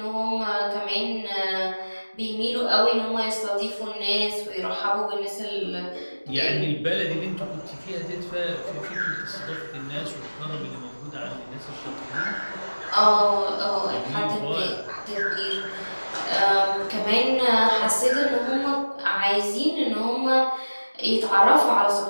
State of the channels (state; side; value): inverted; both; correlation -1.00